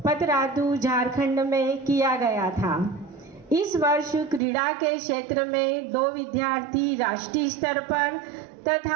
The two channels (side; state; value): left; drops out; at 4.4 s